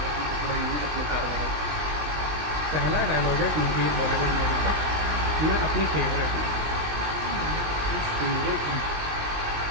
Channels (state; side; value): late; left; 20 ms